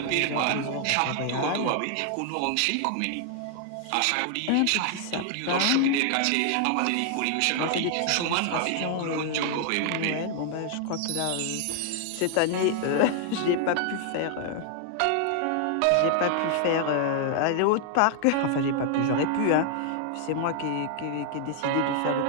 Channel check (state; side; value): different; both; correlation 0.00